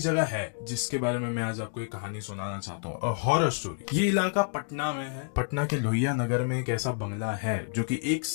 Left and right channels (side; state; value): right; silent; digital silence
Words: है जिसके बारे में मैं आज आपको एक कहानी सुनाना चाहता हूँ, हॉरर स्टोरी। ये इलाका पटना में है। पटना के लोहिया नगर में एक ऐसा बंगला है जो कि एक